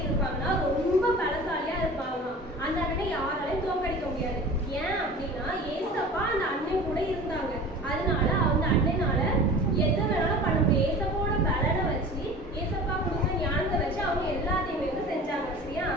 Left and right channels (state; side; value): normal; both; correlation 0.39